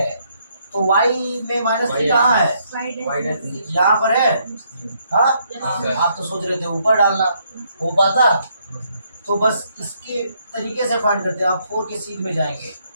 तो y में -3 कहाँ है, यहाँ पर है। हाँ, आप तो सोच रहे थे ऊपर डालना, हो पाता। तो बस इसके तरीके से फाइंड करते हैं। आप 4 के सीध में जाएंगे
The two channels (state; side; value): inverted; both; correlation -0.72